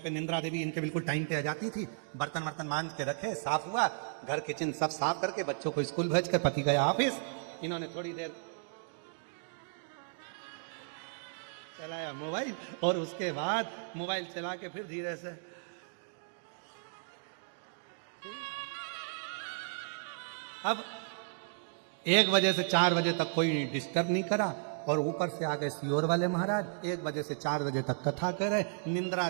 निंद्रा देवी इनके बिल्कुल टाइम पे आ जाती थी। बर्तन वर्तन मांज के रखे, साफ हुआ, घर किचन सब साफ करके बच्चों को स्कूल भेज कर पति गया ऑफिस, इन्होंने थोड़ी देर चलाया मोबाइल और उसके बाद मोबाइल चला के फिर धीरे से अब 1 बजे से 4 बजे तक कोई डिस्टर्ब नहीं करा और ऊपर से आ गए सियोर वाले महाराज 1 बजे से 4 बजे तक कथा कर रहे। निंद्रा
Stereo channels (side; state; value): left; silent; digital silence